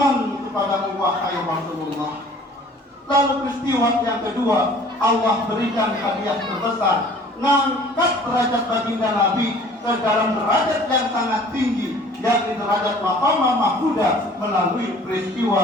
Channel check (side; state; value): both; normal; correlation 0.51